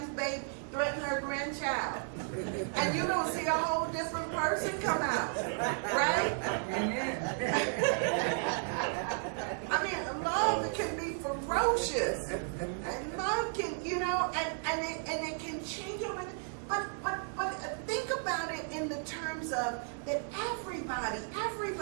baby, threaten her grandchild. And you're going to see a whole different person come out. Right? I mean, love can be ferocious. And love can, you know, and it can change over. But think about it in the terms of that everybody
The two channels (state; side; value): silent; left; 55 dB below the other